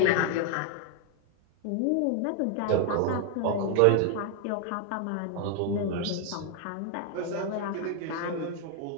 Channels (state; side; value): different; both; correlation 0.00